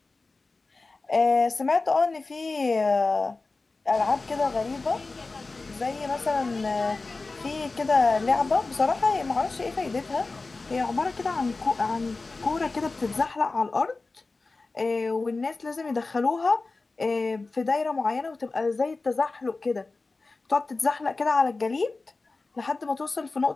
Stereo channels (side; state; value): right; quieter; 3.6 dB